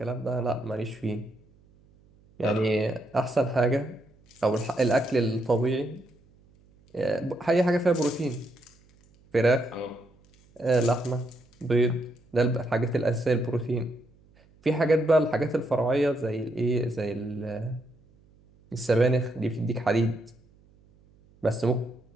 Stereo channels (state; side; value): noise; right; hum, 30 dB below the sound